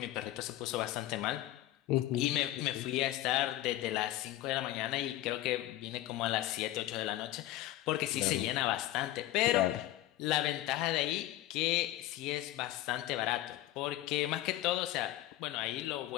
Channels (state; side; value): quieter; right; 14.8 dB